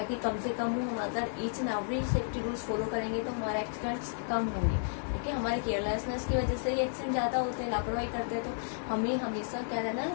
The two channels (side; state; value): right; silent; digital silence